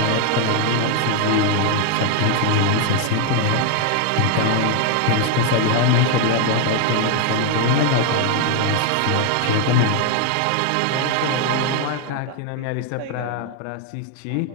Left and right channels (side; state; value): both; different; correlation 0.00